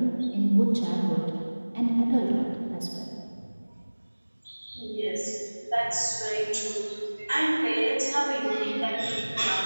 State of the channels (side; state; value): both; inverted; correlation -1.00